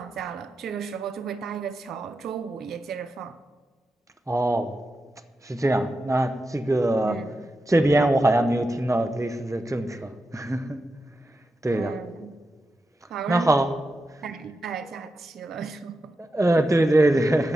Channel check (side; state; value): both; normal; correlation 0.89